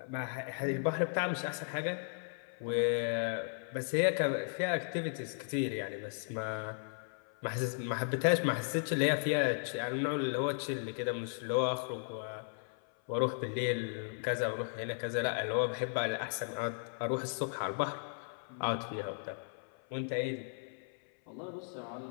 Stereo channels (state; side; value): silent; right; 54 dB below the other